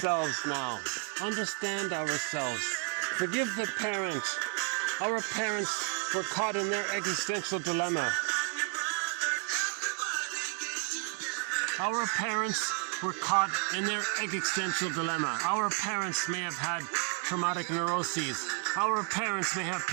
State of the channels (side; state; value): left; quieter; 37.0 dB